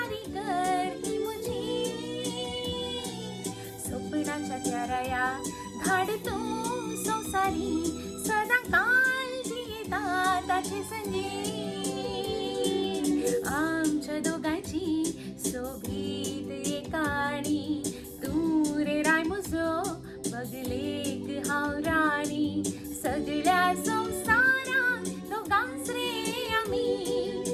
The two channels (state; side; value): identical; both; correlation 1.00